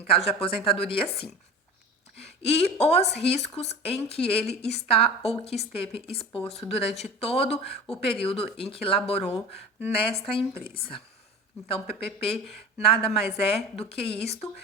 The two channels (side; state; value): both; normal; correlation 0.35